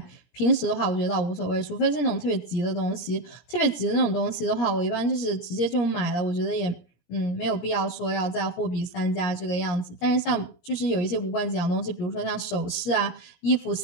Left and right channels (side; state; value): right; late; 17 ms